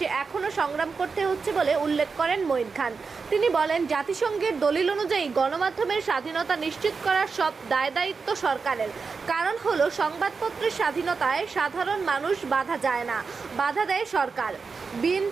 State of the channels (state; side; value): quieter; left; 4.9 dB